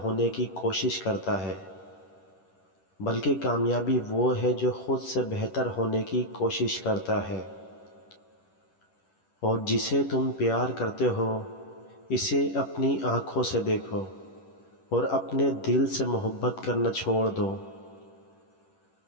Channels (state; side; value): late; right; 10 ms